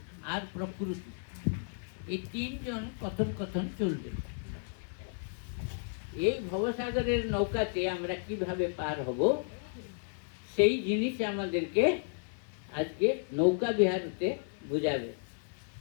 আর প্রকৃতি, এই 3 জন কথন কথন চলবে। এই ভবসাগরের নৌকাতে আমরা কিভাবে পার হব, সেই জিনিস আমাদেরকে আজকে নৌকা বিহারতে বুঝাবে।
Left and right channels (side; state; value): right; silent; 56 dB below the other